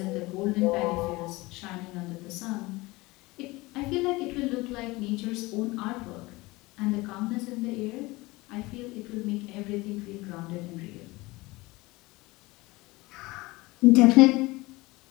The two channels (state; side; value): quieter; right; 21.9 dB